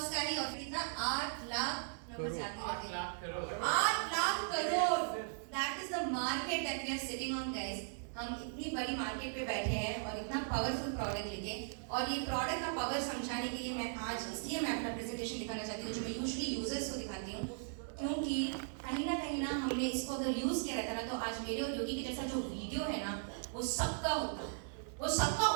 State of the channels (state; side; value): silent; left; 52 dB below the other